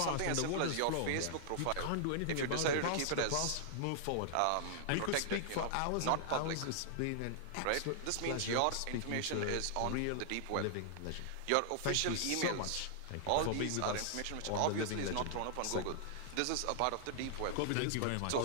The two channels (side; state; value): both; different; correlation -0.01